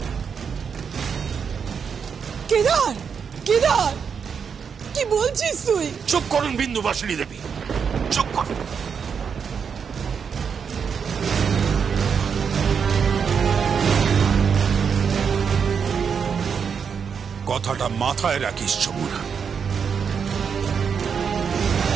কেদার, কেদার, কি বলছিস তুই? চুপ করুন বিন্দুবাসিনী দেবী, চুপ করুন। কথাটা মাথায় রাখিস যমুনা।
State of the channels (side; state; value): left; quieter; 6.6 dB